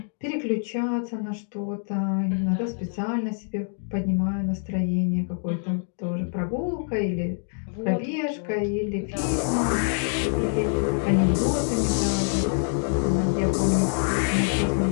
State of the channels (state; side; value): silent; right; 61 dB below the other